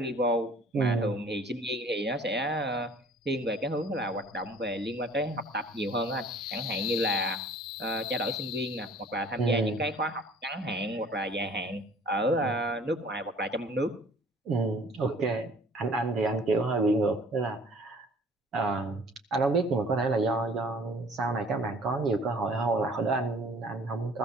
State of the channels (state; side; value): normal; both; correlation 0.52